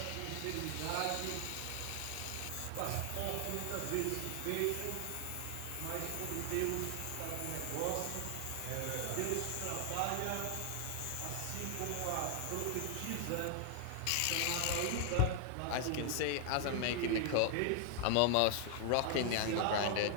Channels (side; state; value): both; different; correlation 0.00